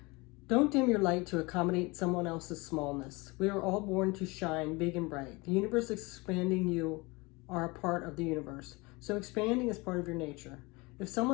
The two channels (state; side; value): quieter; right; 25.1 dB